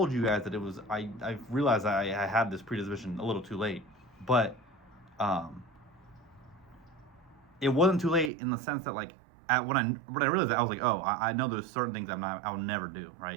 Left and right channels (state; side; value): drops out; left; at 8.3 s